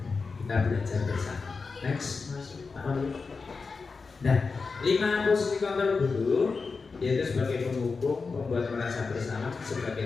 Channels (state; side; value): quieter; right; 4.6 dB